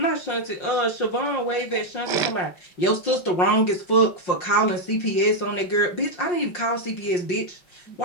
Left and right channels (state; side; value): late; right; 5.6 ms